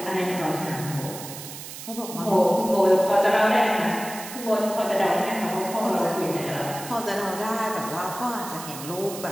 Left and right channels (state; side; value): noise; right; hiss, 11 dB below the sound